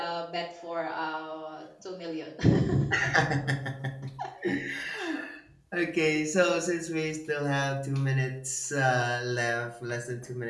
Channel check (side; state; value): both; identical; correlation 1.00